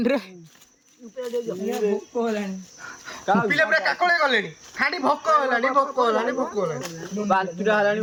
ରେ पिले पुरा काकोळे गलेनी खाडी भोक हलानी बांतुरा हलानी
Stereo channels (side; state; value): both; identical; correlation 1.00